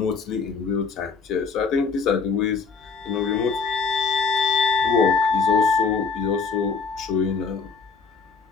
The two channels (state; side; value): quieter; right; 5.0 dB